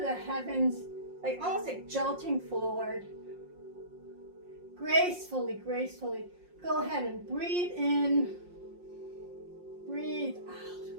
heavens, like almost like jolting forward. Gracefully. Go ahead and breathe in. Breathe out.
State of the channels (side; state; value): left; late; 5.6 ms